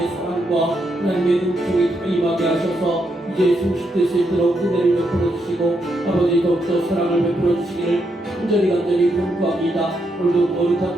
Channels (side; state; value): both; normal; correlation 0.80